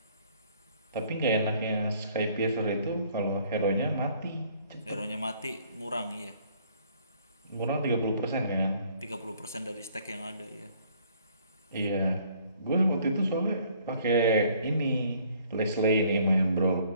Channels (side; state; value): both; inverted; correlation -0.61